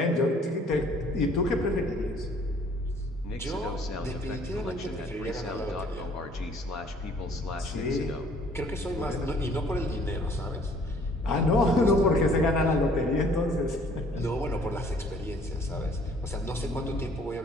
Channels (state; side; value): normal; both; correlation 0.58